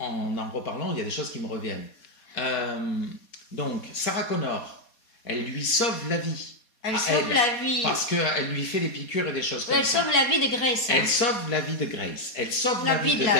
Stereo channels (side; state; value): right; late; 4.2 ms